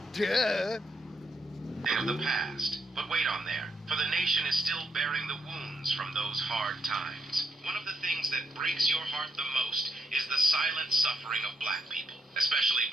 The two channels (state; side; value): normal; both; correlation 0.77